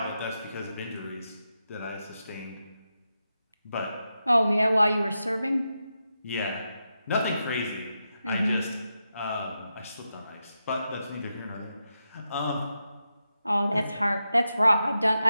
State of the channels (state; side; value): inverted; both; correlation -0.88